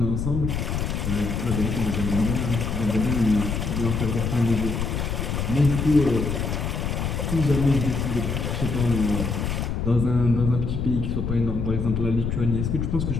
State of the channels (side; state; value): left; noise; rumble, 1 dB below the sound